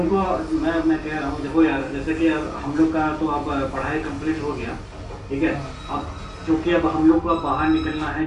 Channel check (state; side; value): identical; both; correlation 1.00